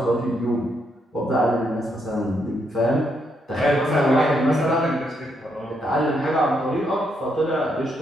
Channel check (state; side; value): normal; both; correlation 0.77